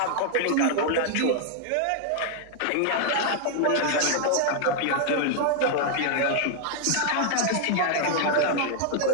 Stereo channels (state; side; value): different; both; correlation 0.00